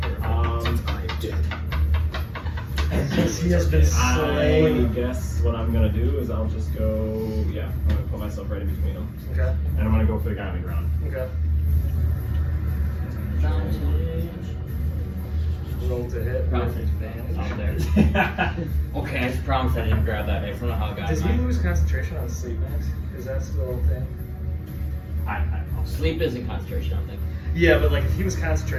He has been I slain. guess what I'm gonna do is I'll just go. Yeah, I'm gonna put myself right in between them, Okay. and I'm gonna go for the guy on the ground. Okay. Roll to hit. Promise with advantage. out there. Okay, I just promise I didn't grab that dice. I don't know how I got Does he mine. lose concentration on sleep max? Is that still a thing? I don't know. Sleep isn't concentration, I don't think. Yeah, but like if he was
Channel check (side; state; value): both; identical; correlation 1.00